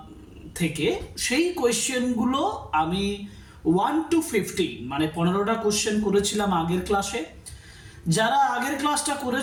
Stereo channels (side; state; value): both; identical; correlation 1.00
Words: থেকে, সেই কোয়েশ্চেনগুলো আমি 1 to 15 মানে 15টা কোয়েশ্চেন করেছিলাম আগের ক্লাসে। যারা আগের ক্লাসটা